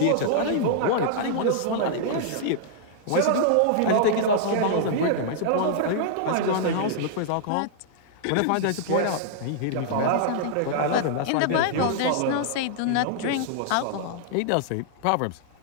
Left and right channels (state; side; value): different; both; correlation -0.01